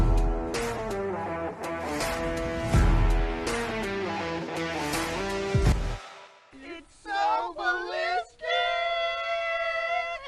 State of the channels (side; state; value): both; identical; correlation 1.00